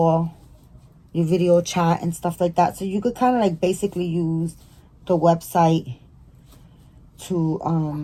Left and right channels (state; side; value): identical; both; correlation 1.00